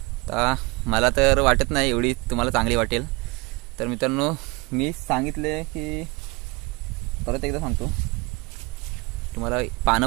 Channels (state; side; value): quieter; left; 25.4 dB